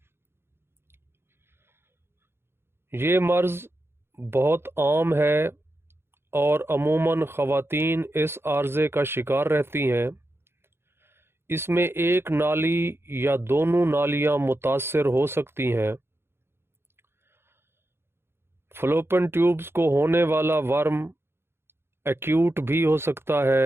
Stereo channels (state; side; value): late; left; 0.11 ms